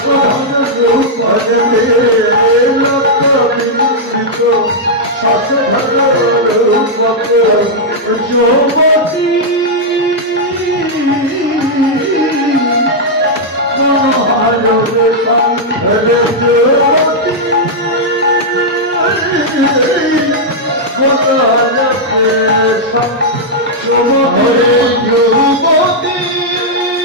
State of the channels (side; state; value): both; normal; correlation -0.05